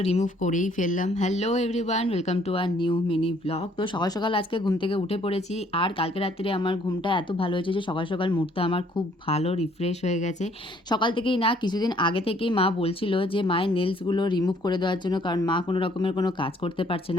remove করেই ফেললাম। Hello everyone, welcome to our new mini blog. তো সকাল সকাল আজকে ঘুম থেকে উঠে পড়েছি, আর কালকে রাত্রে আমার ঘুমটা এত ভালো হয়েছে যে সকাল সকাল মুডটা আমার খুব ভালো রিফ্রেশ হয়ে গেছে। সকাল থেকেই না, কিছুদিন আগে থেকেই মা বলছিল যে মায়ের নেলসগুলো রিমুভ করে দেওয়ার জন্য, কারণ মা কোনো রকমের কোনো কাজ করতে পারছে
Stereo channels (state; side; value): normal; both; correlation 0.63